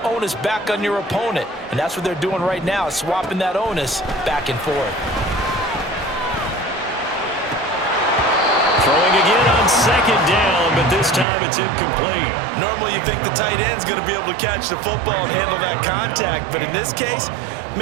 onus back on your opponent. And that's what they're doing right now, swapping that onus back and forth. Throwing again on 2nd down, but this time it's incomplete. Normally you think the tight end's going to be able to catch the football and handle that contact, but in this case,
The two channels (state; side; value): drops out; left; at 11.2 s